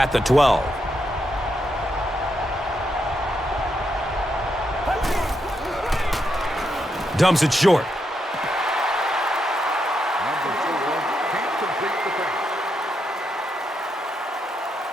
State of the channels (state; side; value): normal; both; correlation 0.81